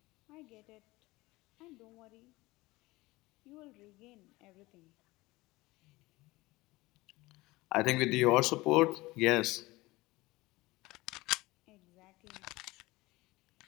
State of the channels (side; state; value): right; quieter; 20.7 dB